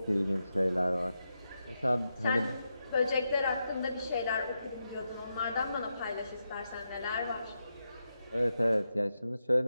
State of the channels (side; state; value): both; inverted; correlation -0.86